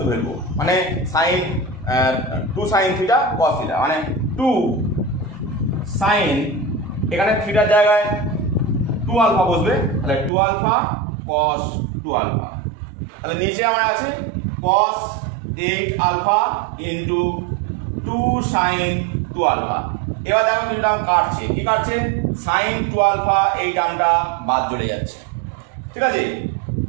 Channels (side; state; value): left; drops out; at 10.3 s